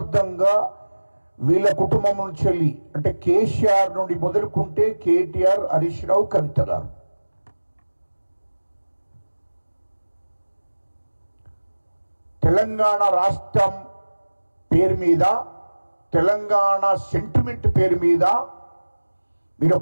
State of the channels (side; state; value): both; inverted; correlation -1.00